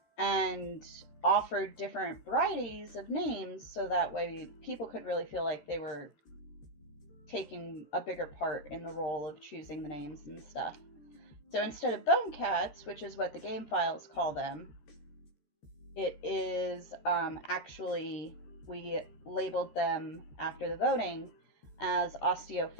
and offered different varieties of names so that way people could really feel like they were taking a bigger part in the role of choosing the names and stuff. So instead of bone cats, which is what the game files call them, it is actually, we labeled them after the voting as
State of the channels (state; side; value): late; right; 13 ms